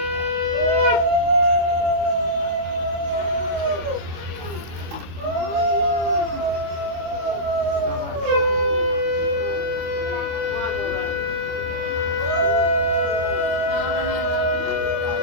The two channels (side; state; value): left; late; 25 ms